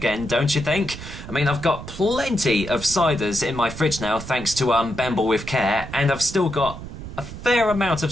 don't you think? I mean, I've got plenty of ciders in my fridge now, thanks to Bamble with Care, and I've still got a fair amount of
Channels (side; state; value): right; noise; rumble, 11 dB below the sound